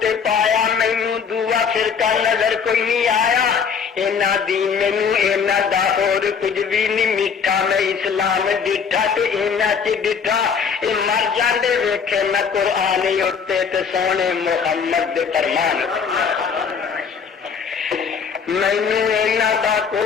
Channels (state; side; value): quieter; right; 6.3 dB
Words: تے پایا مینوں دعا فرقہ نظر کوئی نہیں آیا اینا دین مینوں اینا دا اور کچھ بھی نہیں میٹھا میں اسلام ڈٹھا تے اینا چ ڈٹھا اے مر جاندے ویکھے میں قرآن اتے تے سونے محمد دے فرمان مینوں اینا دا